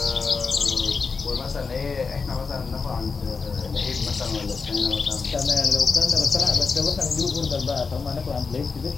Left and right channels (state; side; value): quieter; right; 4.9 dB